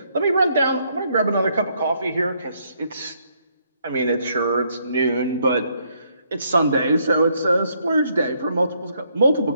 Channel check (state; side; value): inverted; both; correlation -0.72